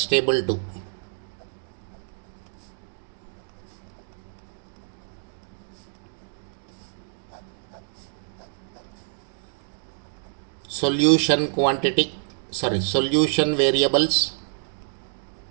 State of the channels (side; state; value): left; silent; digital silence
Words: table 2. Solution variables.